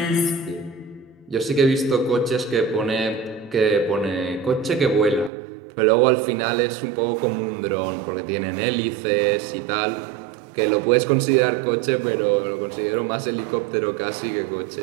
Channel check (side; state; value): left; drops out; at 5.3 s